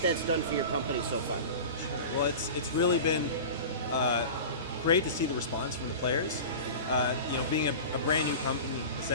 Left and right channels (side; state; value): both; inverted; correlation -0.32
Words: that's done for your company so far. Sure. Well, it's really been great to see the response from the players. Being a brand new company,